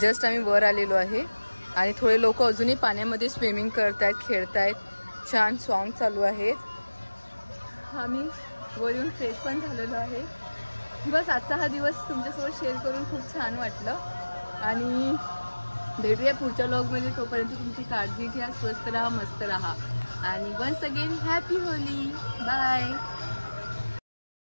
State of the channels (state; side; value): inverted; both; correlation -1.00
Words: आम्ही वर आलेलो आहे आणि थोडे लोक अजूनही पाण्यामध्ये स्विमिंग करतायत, खेळतायत. छान सॉन्ग चालू आहेत. आम्ही वर येऊन फ्रेश पण झालेलो आहे. बस आजचा हा दिवस तुमच्यासोबत शेअर करून खूप छान वाटलं आणि भेटूया पुढच्या व्लॉगमध्ये. तोपर्यंत तुमची काळजी घ्या, स्वस्त राहा, मस्त राहा आणि वन्स अगेन हॅपी होली. बाय.